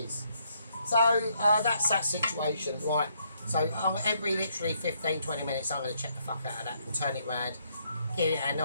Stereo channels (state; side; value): inverted; both; correlation -0.72